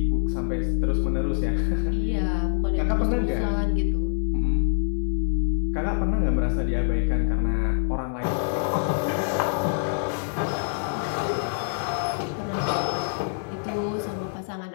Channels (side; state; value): right; silent; digital silence